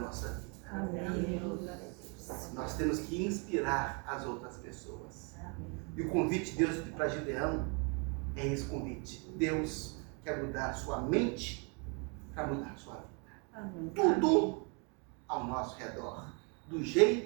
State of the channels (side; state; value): left; quieter; 35.5 dB